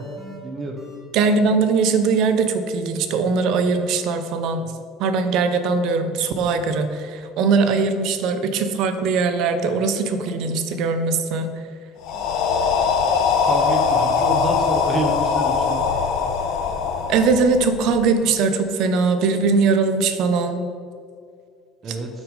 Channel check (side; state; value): both; normal; correlation 0.34